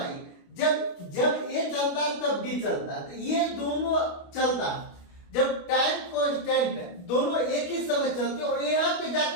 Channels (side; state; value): right; late; 29 ms